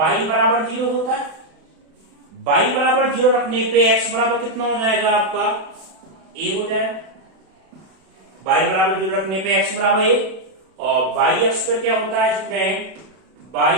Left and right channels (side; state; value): left; late; 32 ms